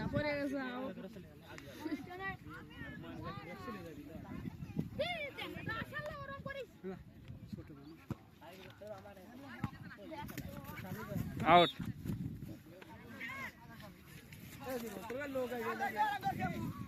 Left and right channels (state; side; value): identical; both; correlation 1.00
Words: পড়ে গেছে আউট